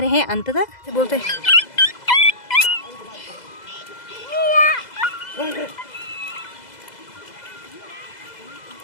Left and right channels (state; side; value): late; right; 2.0 ms